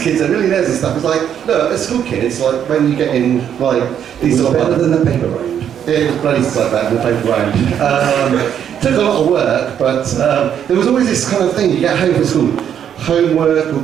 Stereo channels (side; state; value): left; quieter; 9.1 dB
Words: kids are millionaires and stuff. It's like, look, as school kids, like when you get in like these sort of better than the paper round. it was bloody like that in the paper round. Took a lot of work, but there was always this kind of thing, you get home from school, homework or